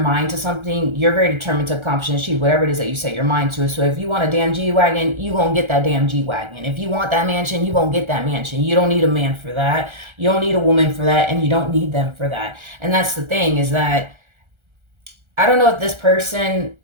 to something, you're very determined to accomplish and achieve whatever it is that you set your mind to. So if you want a damn G-Wagon, you gonna get that damn G-Wagon. If you want that mansion, you gonna get that mansion. You don't need a man for that. You don't need a woman for that, and you don't need them for that. And that's the thing, is that I don't know if this person,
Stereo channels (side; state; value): left; late; 1.3 ms